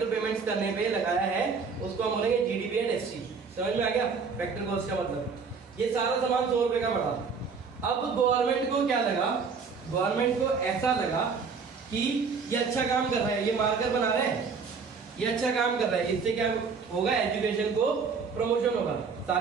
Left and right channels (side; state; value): left; quieter; 5.3 dB